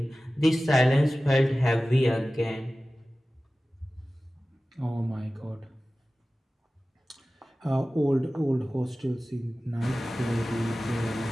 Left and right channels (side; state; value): both; normal; correlation 0.96